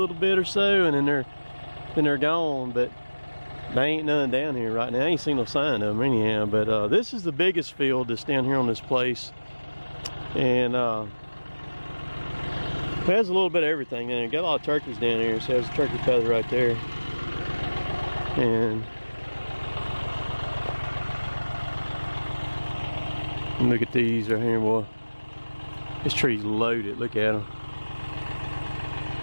bit or so, and then they're gone. But there ain't none down here right now. I ain't seen no sign of them anyhow. But this is the biggest field that's down here on this place, and it has a little bit of everything in it. Got a lot of turkeys down here. So there's a turkey feather right there. And look at these right here, boy. This tree's loaded. Look at them.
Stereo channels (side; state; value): both; inverted; correlation -1.00